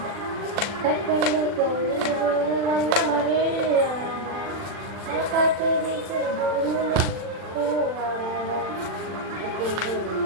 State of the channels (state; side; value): late; left; 39 ms